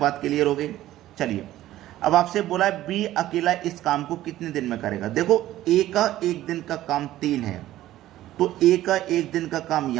क्लियर हो गई। चलिए अब आपसे बोला है बी अकेला इस काम को कितने दिन में करेगा। देखो ए का एक दिन का काम 3 है, तो ए का एक दिन का काम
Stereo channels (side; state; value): left; quieter; 14.4 dB